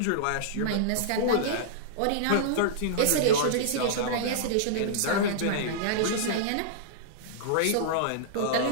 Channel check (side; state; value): both; different; correlation -0.02